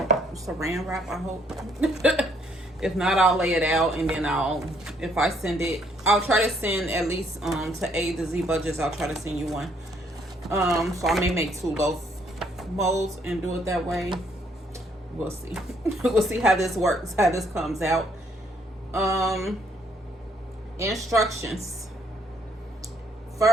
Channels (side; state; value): both; normal; correlation 0.68